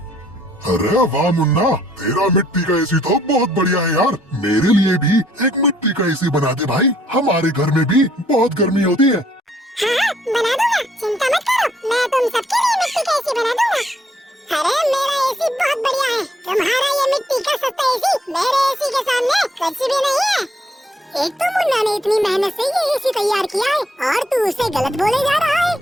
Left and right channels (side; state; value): both; normal; correlation 0.68